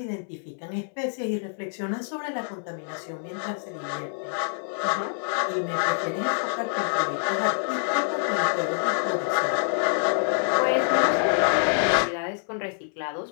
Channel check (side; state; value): right; silent; 61 dB below the other